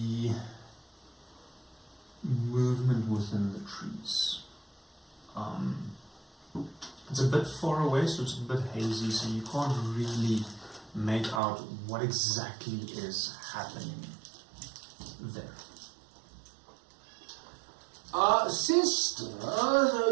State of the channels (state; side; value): drops out; left; at 11.4 s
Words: movement within the trees. It's a bit far away, so it's a bit hazy, so you can't really make out what exactly is happening there. Sister,